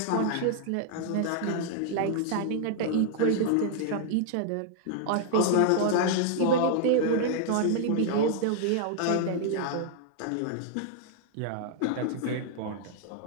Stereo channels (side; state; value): both; different; correlation 0.00